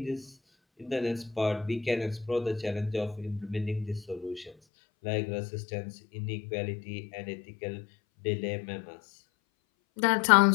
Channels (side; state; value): right; drops out; at 4.5 s